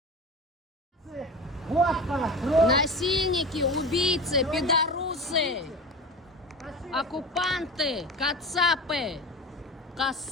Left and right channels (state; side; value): normal; both; correlation 0.31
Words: Насильники, убийцы, пидорусы, оккупанты, кацапы,